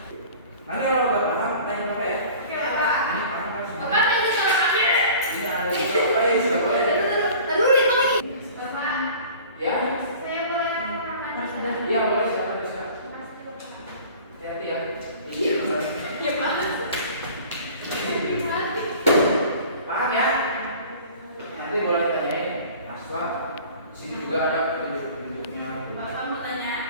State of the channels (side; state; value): both; inverted; correlation -0.44